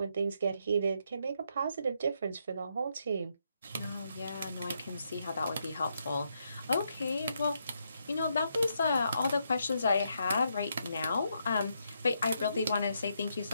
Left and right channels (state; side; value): inverted; both; correlation -0.78